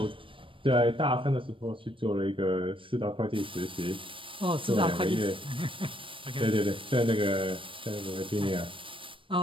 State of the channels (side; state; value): left; late; 0.25 ms